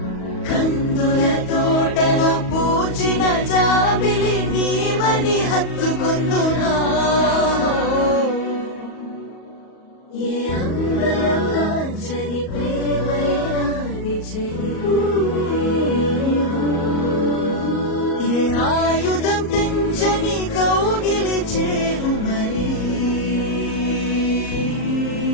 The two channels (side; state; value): right; late; 38 ms